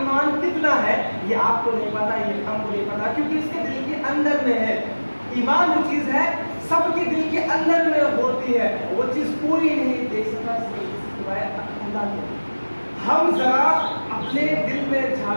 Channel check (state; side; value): inverted; both; correlation -1.00